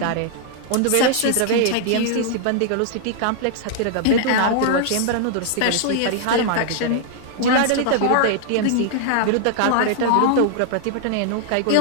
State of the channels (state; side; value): different; both; correlation 0.00